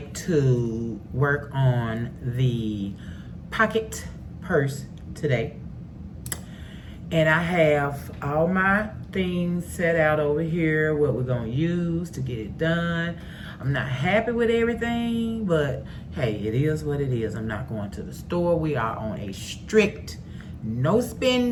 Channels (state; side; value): identical; both; correlation 1.00